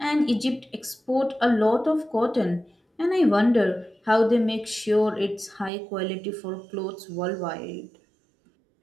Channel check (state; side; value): drops out; left; at 5.7 s